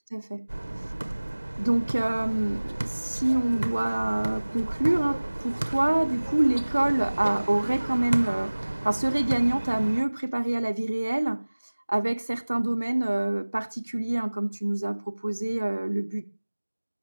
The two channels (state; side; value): inverted; both; correlation -1.00